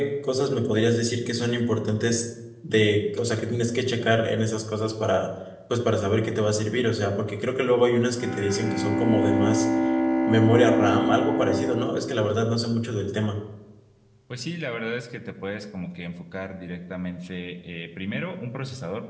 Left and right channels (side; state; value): both; identical; correlation 1.00